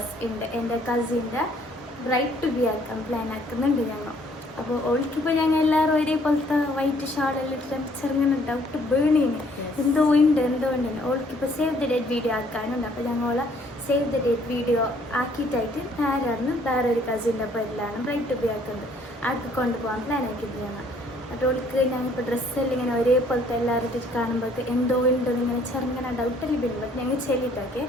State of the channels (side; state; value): both; normal; correlation 0.62